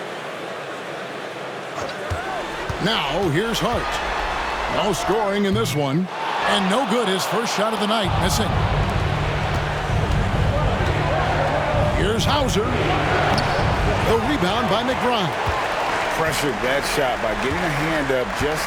Now, here's Hart. No scoring in this one. And no good, his first shot of the night, missing. Here's Hauser. The rebound by McBride. Pressured that shot by getting a hand up just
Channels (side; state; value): both; identical; correlation 1.00